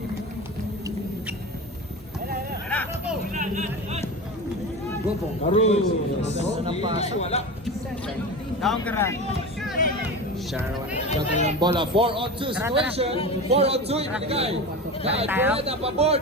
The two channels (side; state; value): both; normal; correlation 0.27